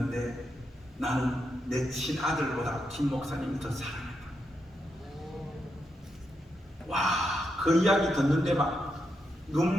나는 내 친아들보다 김 목사님이 더 사랑했다. 와, 그 이야기 듣는데 막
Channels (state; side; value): normal; both; correlation 0.83